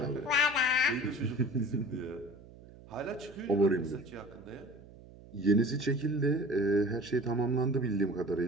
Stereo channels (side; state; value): right; noise; hum, 20 dB below the sound